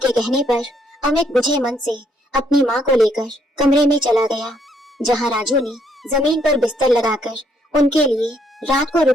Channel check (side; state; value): both; normal; correlation 0.70